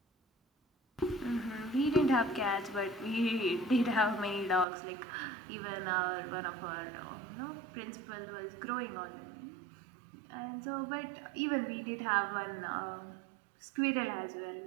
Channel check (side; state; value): left; drops out; at 4.7 s